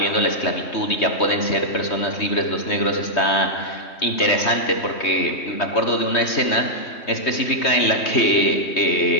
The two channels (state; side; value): late; right; 3.2 ms